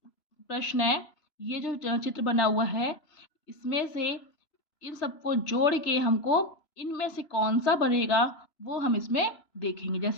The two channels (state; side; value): late; right; 3.0 ms